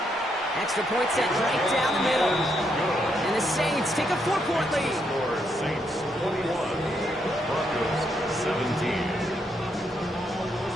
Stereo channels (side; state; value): both; normal; correlation 0.77